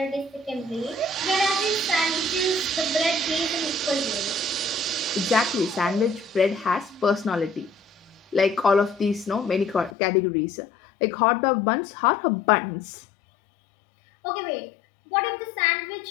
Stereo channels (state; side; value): drops out; right; at 10.0 s